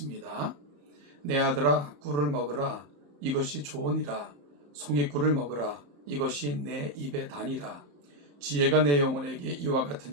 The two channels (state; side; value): late; left; 34 ms